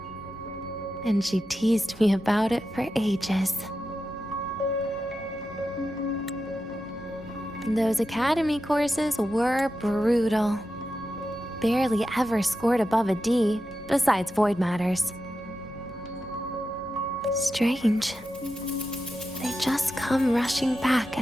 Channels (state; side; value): noise; left; hum, 23 dB below the sound